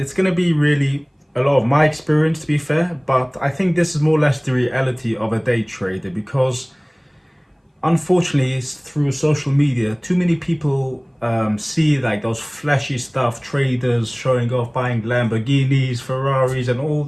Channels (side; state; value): both; identical; correlation 1.00